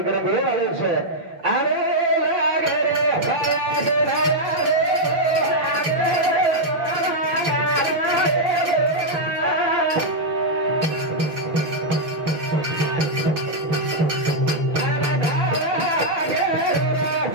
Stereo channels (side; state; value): left; late; 6.2 ms